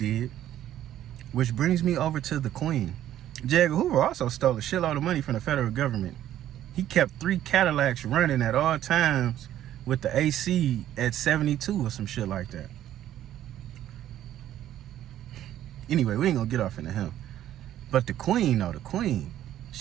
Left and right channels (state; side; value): quieter; left; 12.1 dB